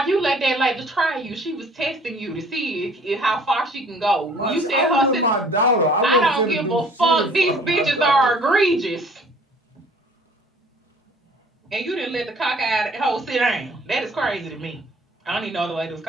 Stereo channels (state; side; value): normal; both; correlation 0.54